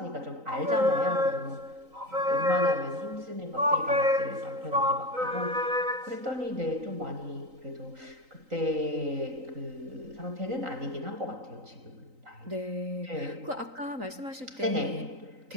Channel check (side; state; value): left; late; 3.9 ms